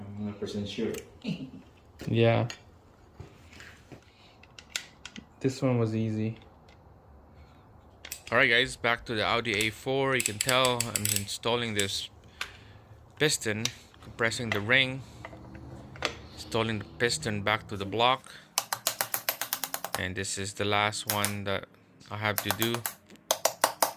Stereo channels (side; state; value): both; identical; correlation 1.00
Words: 100% sure. Yeah. This one was easy. Alright guys, back to the AudioA4. You can tell I'm installing this piston, compressing the ring, installing the piston back to the block, and this is the last one that I have to do.